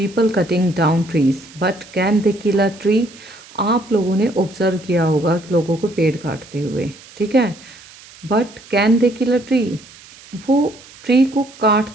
cutting down trees but can they kill a tree. आप लोगों ने ऑब्जर्व किया होगा कि लोगों को पेड़ काटते हुए, ठीक है। But can they kill a tree, वो ट्री को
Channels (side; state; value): right; noise; hiss, 22 dB below the sound